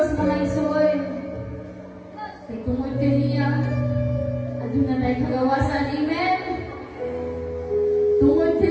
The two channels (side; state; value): both; identical; correlation 1.00